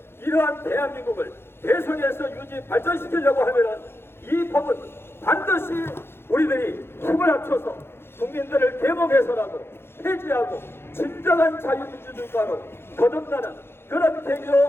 이러한 대한민국을 대선에서 유지 발전시키려고 하면은 이 법은 반드시 우리들이 힘을 합쳐서 국민들을 계몽해서라도 폐지하고 진정한 자유민주주의가로 거듭나는 그런 계기로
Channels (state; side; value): late; right; 0.11 ms